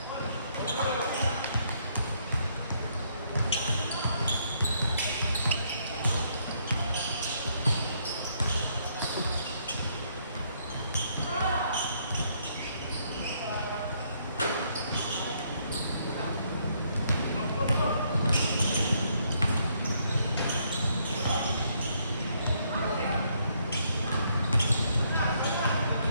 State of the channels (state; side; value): inverted; both; correlation -0.71